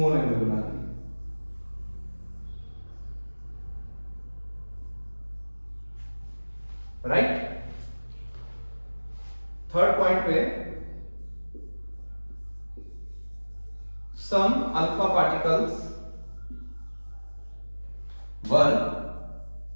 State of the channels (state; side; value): inverted; both; correlation -1.00